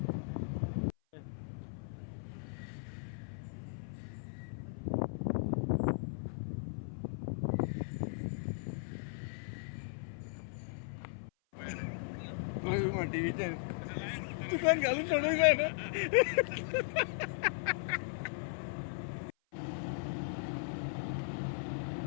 टीव्हीचे दुकान घालून सोडून जाय ना.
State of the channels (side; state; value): right; silent; 53 dB below the other